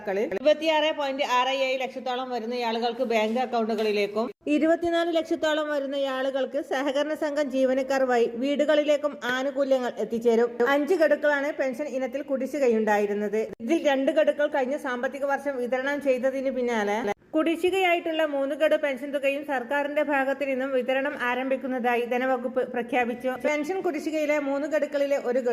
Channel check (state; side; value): identical; both; correlation 1.00